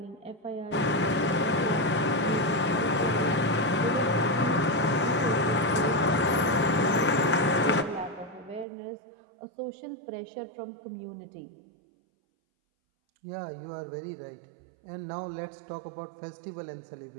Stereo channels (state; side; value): drops out; left; at 8.7 s